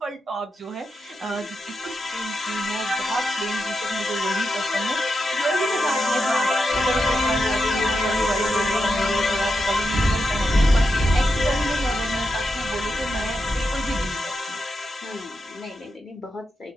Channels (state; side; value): normal; both; correlation 0.87